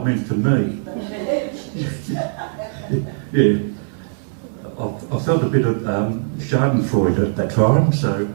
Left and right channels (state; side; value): silent; left; digital silence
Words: meant for me. Yeah. I felt a bit of schadenfreude at that time, so a